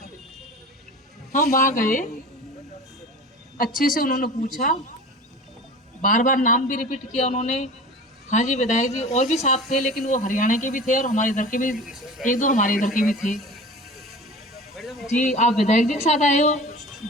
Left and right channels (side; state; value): both; normal; correlation 0.37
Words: हम वहाँ गए, अच्छे से उन्होंने पूछा, बार बार नाम भी रिपीट किया उन्होंने। हाँ जी विधायक जी और भी साथ थे, लेकिन वो हरियाणा के भी थे और हमारे इधर के भी, 1-2 हमारे इधर के भी थे। जी आप विधायक जी के साथ आए हो?